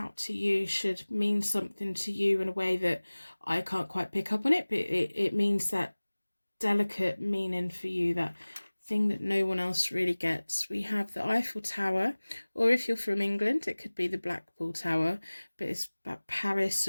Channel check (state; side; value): inverted; both; correlation -1.00